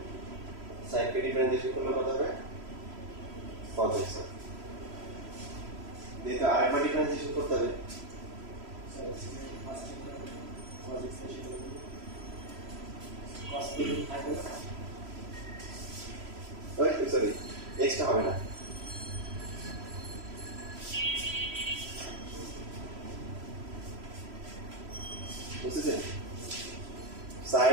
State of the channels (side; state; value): left; late; 3.0 ms